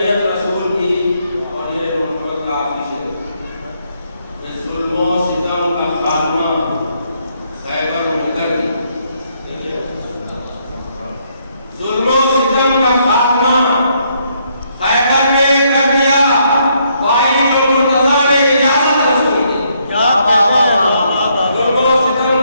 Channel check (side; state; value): both; inverted; correlation -0.72